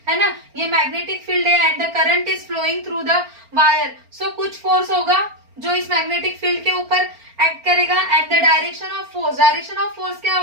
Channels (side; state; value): left; late; 4.4 ms